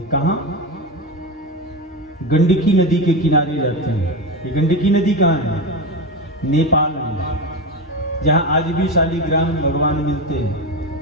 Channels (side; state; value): both; normal; correlation 0.17